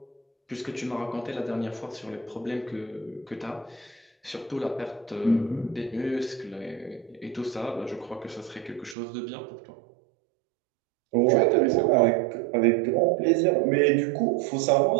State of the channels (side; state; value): left; drops out; at 9.0 s